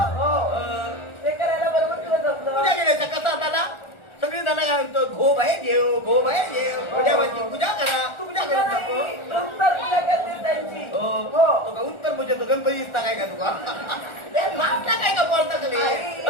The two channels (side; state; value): right; late; 1.4 ms